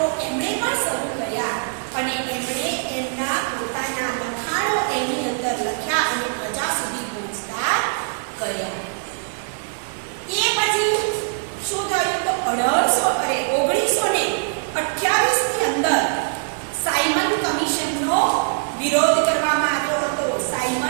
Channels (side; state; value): left; silent; digital silence